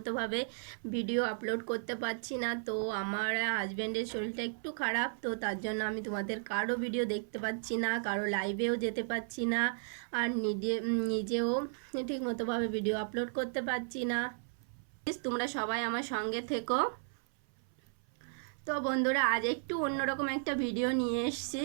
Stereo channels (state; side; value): silent; left; 55 dB below the other